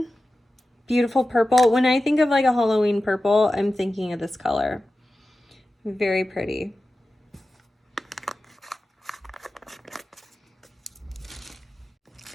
beautiful purple. When I think of like a Halloween purple, I'm thinking of this color. Very pretty.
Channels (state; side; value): normal; both; correlation 0.94